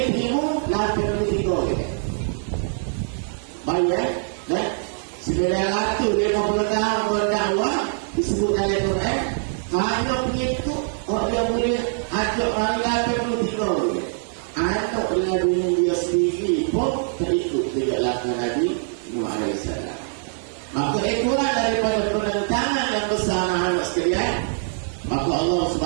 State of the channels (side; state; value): left; silent; digital silence